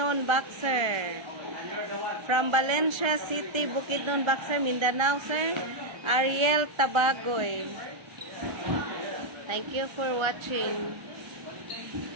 Boxer. From Valencia City, Bukidnon, Boxer, Mindanao, sir. Ariel Tabagoy. Thank you for watching.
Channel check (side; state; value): left; late; 1.3 ms